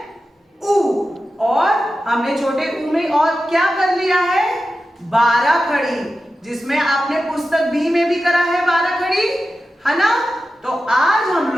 ऊ। और हमने छोटे ऊ में और क्या कर लिया है? 12 खड़ी, जिसमें आपने पुस्तक बी में भी करा है 12 खड़ी, है ना? तो आज हम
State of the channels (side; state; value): both; normal; correlation 0.92